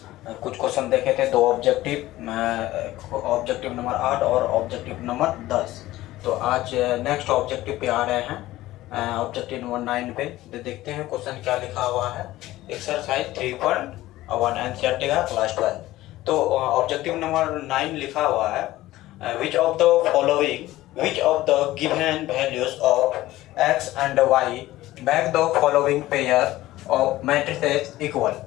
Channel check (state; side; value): quieter; right; 16.4 dB